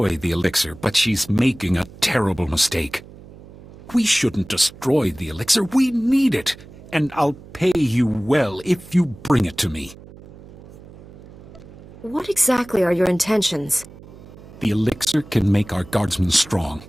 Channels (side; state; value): right; noise; hum, 19 dB below the sound